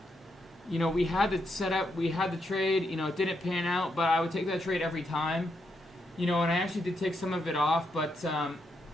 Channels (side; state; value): both; normal; correlation 0.80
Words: you know, we had the setup, we had the trade, you know, it didn't pan out, but I would take that trade every time. You know, and I actually did take some of it off, but,